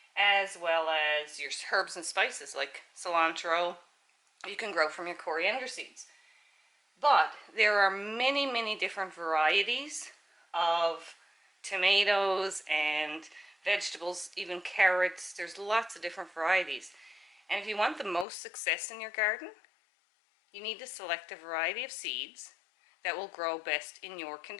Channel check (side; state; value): right; drops out; at 18.2 s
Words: as well as your herbs and spices like cilantro. You can grow from your coriander seeds. But there are many different varieties of tomatoes and vegetables, even carrots. There's lots of different varieties. And if you want the most success in your garden, you need to select a variety of seeds that will grow best in your